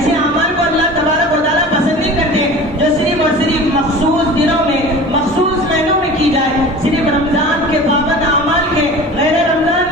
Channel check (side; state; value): both; normal; correlation 0.38